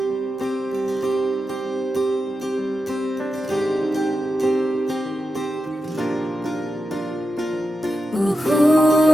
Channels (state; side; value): normal; both; correlation 0.90